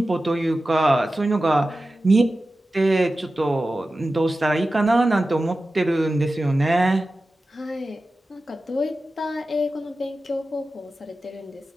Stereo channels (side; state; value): both; normal; correlation 0.94